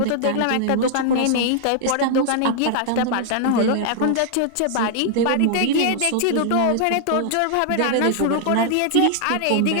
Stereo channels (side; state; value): both; different; correlation -0.01